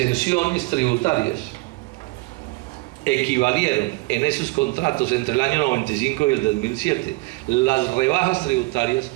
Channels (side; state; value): left; quieter; 23.8 dB